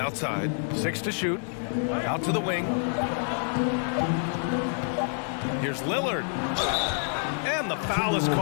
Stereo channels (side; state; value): right; silent; 55 dB below the other